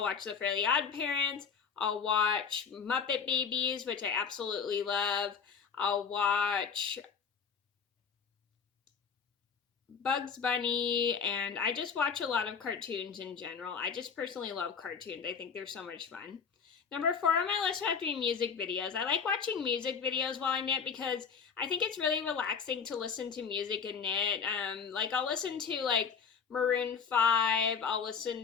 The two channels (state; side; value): quieter; right; 6.4 dB